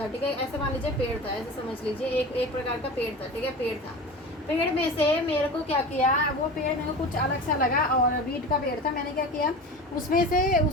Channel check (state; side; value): normal; both; correlation 0.32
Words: ठीक है, ऐसे मान लीजिए पेड़ था, ऐसे समझ लीजिए एक प्रकार का पेड़ था, ठीक है, पेड़ में से मेरे को क्या किया, वो पेड़ मेरे को कुछ अलग सा लगा और वीट का पेड़ था, मैंने क्या किया, उसमें से